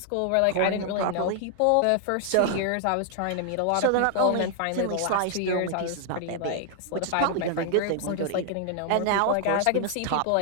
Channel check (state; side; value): different; both; correlation 0.00